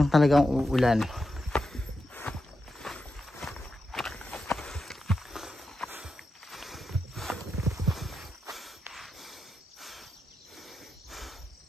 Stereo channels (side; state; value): both; normal; correlation 0.88